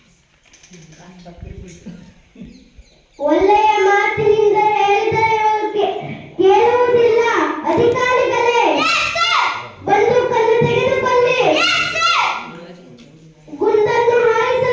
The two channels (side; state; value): both; identical; correlation 1.00